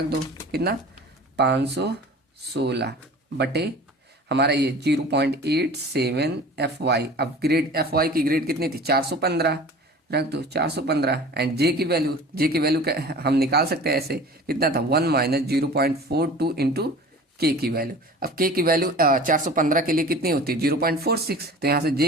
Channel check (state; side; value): normal; both; correlation 0.41